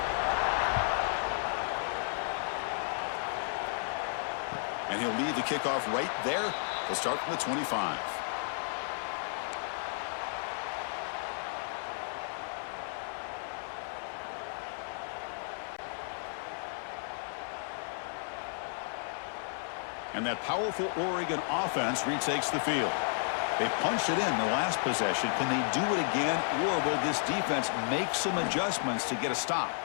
And he'll lead the kickoff right there. He'll start from the 25. And that powerful Oregon offense retakes the field. They punched it in the last possession. Can they do it again, or will this defense make some adjustments to get a stop?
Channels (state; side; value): silent; right; 56 dB below the other